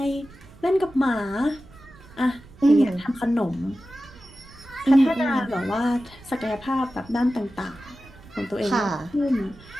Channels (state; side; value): noise; right; rumble, 22 dB below the sound